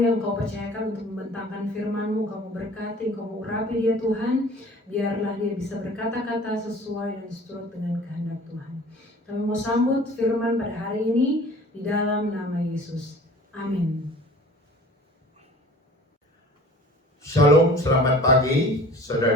Kau percayakan untuk membentangkan firman-Mu, Kau memberkati, Kau mengurapi dia Tuhan, biarlah dia bisa berkata-kata sesuai dan seturut dengan kehendak Tuhan. Kami mau sambut firman pada hari ini di dalam nama Yesus. Amin. Shalom, selamat pagi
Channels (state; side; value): normal; both; correlation 0.46